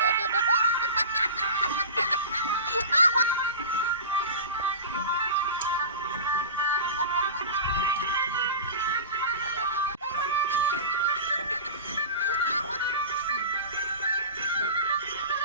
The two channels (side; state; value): both; inverted; correlation -0.31